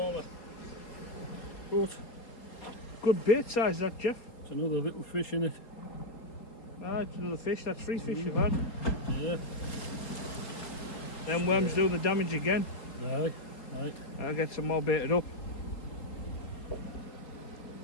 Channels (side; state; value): right; late; 4.3 ms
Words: But good bait size, that, Geoff. It's another little fish in it. Ah, it's another fish. That's 3 fish you've had. Yeah. Then worms doing the damage again. Aye. Right. I'll get some more baited up.